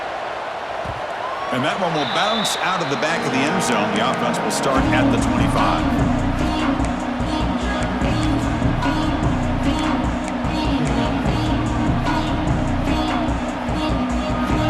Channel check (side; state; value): both; identical; correlation 1.00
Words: And that one will bounce out of the back of the end zone. The offense will start at the 25.